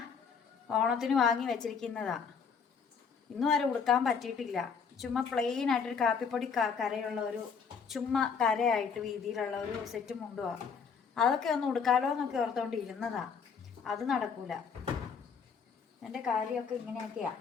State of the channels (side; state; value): right; quieter; 6.1 dB